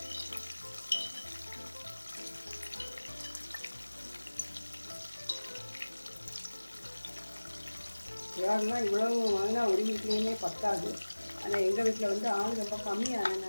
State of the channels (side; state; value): both; inverted; correlation -1.00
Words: இறால்லாம் இவ்வளோ வாங்கினா ஒரு வீட்லேயுமே பத்தாது. ஆனால் எங்கள் வீட்டில் வந்து ஆள் ரொம்ப